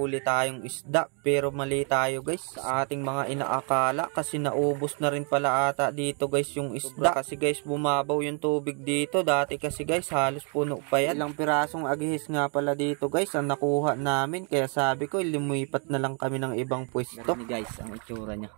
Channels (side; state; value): left; quieter; 38.6 dB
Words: tayong isda pero mali tayo guys sa ating mga inaakala kasi naubos na rin pala ata dito guys yung isda kasi guys bumabaw yung tubig dito dati kasi guys halos puno pa yan. Ilang pirasong agihis nga pala dito guys ang nakuha namin kaya sabi ko lumipat na lang kami ng ibang pwesto. Ganun guys ang itsura nya,